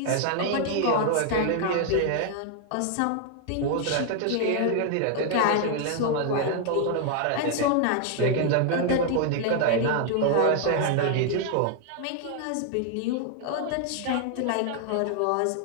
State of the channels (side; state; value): both; different; correlation 0.00